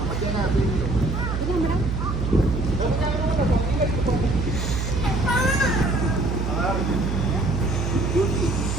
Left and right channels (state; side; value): noise; right; hum, 1 dB below the sound